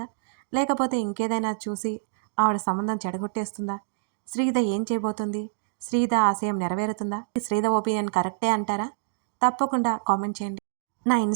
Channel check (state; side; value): silent; left; digital silence